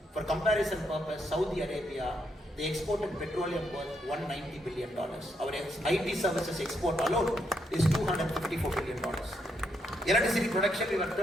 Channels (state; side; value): normal; both; correlation 0.78